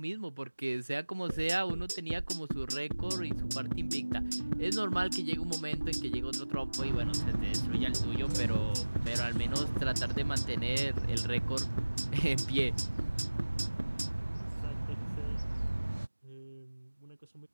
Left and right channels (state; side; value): inverted; both; correlation -1.00